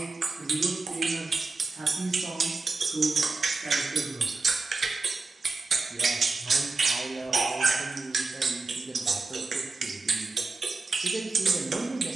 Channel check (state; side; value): quieter; left; 3.8 dB